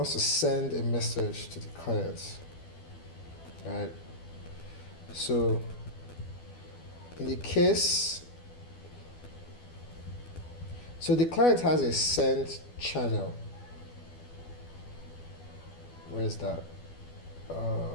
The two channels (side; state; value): right; late; 12 ms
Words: to send a message to the client. All right, so in the case, so the client has a send channel. Where is that?